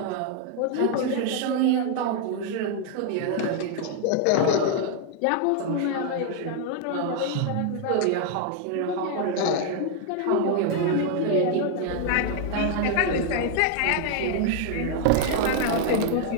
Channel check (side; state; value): both; different; correlation 0.00